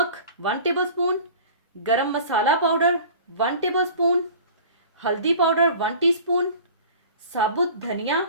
1 टेबल स्पून, गरम मसाला पाउडर 1 टेबल स्पून, हल्दी पाउडर 1 टीस्पून, साबुत धनिया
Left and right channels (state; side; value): inverted; both; correlation -0.42